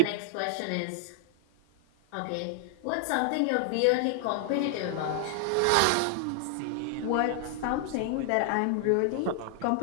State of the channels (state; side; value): different; both; correlation 0.00